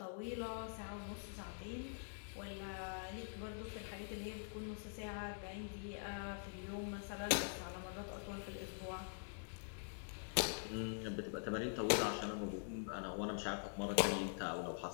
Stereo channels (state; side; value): silent; right; digital silence